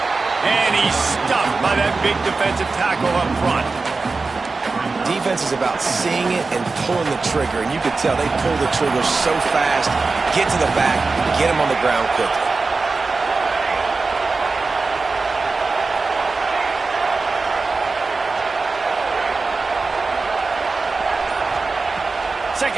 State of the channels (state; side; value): quieter; left; 4.0 dB